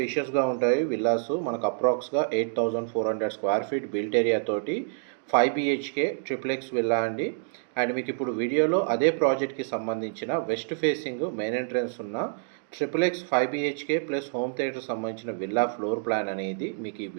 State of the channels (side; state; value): left; silent; digital silence